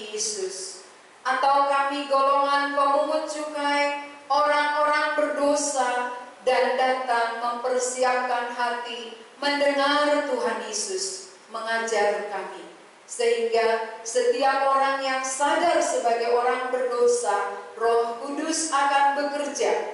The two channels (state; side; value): identical; both; correlation 1.00